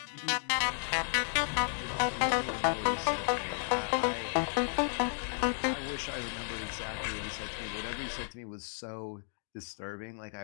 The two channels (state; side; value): silent; right; digital silence